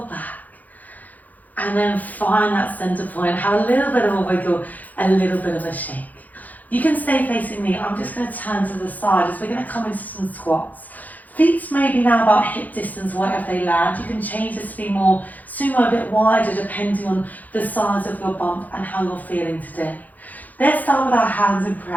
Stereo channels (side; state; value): right; late; 0.081 ms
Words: back. And then find that center point. Have a little bit of a wiggle, a little bit of a shake. You can stay facing me. I'm just going to turn to the side as we're going to come into some squats. Feet maybe now about hip distance, wherever they land. You can change this to be more sumo, a bit wider, depending on the size of your bump and how you're feeling today. Let's start with our hands in